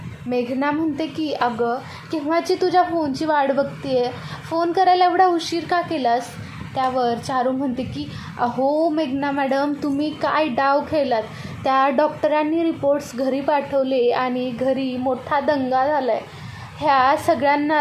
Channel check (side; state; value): both; identical; correlation 1.00